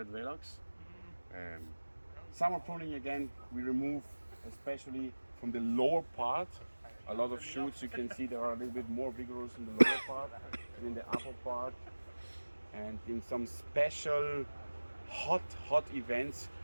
Velox. Summer pruning again, we remove especially from the lower part a lot of shoots. You can see they are a little bit more vigorous in the lower part than in the upper part. And in some special hot events,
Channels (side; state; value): both; inverted; correlation -1.00